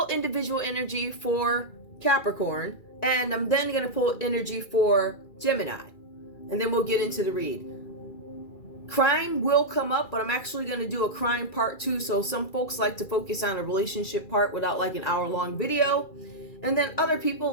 individual energy for Capricorn, and I'm then going to pull energy for Gemini, and then we'll get into the read. Crime will come up, but I'm actually going to do a crime part 2. So some folks like to focus on a relationship part without like an hour-long video. And then other people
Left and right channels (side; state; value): right; late; 2.3 ms